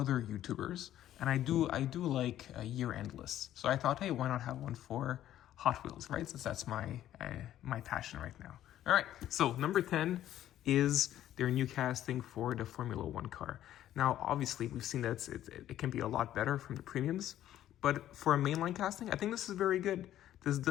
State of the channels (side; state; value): right; quieter; 12.3 dB